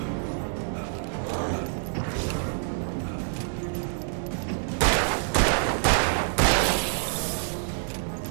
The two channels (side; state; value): left; silent; digital silence